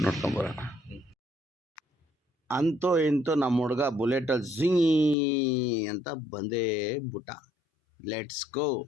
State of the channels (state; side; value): drops out; right; at 5.2 s